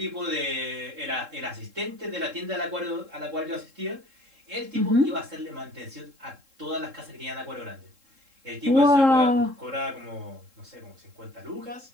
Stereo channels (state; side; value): late; left; 3.7 ms